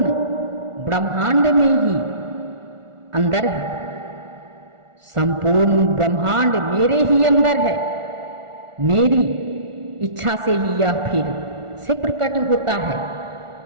ब्रह्मांड में ही अंदर है, संपूर्ण ब्रह्मांड मेरे ही अंदर है। मेरी इच्छा से ही यह फिर से प्रकट होता है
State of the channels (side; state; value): left; late; 1.4 ms